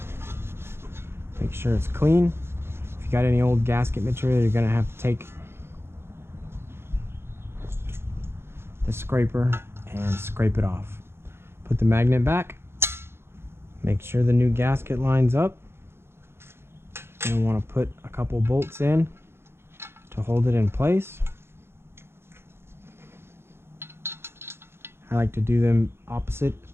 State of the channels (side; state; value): left; late; 0.12 ms